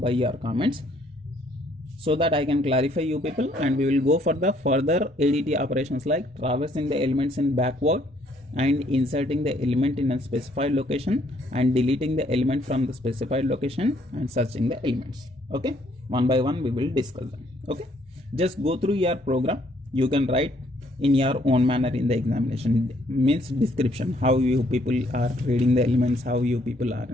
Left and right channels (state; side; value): normal; both; correlation 0.66